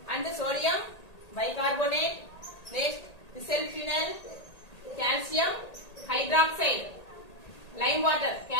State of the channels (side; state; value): right; late; 1.8 ms